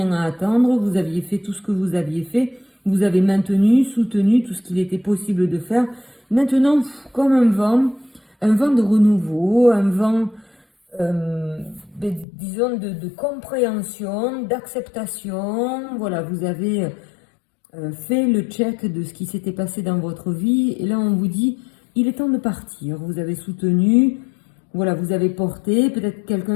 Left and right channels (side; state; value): right; drops out; at 12.2 s